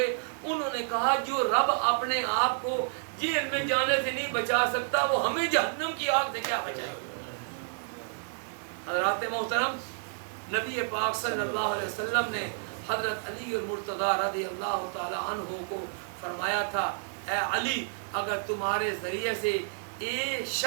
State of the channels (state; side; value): silent; left; digital silence